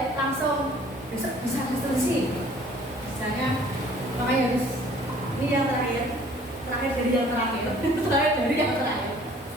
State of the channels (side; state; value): both; normal; correlation 0.54